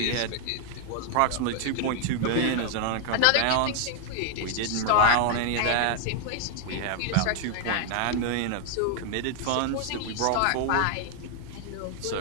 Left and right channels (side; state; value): both; different; correlation 0.00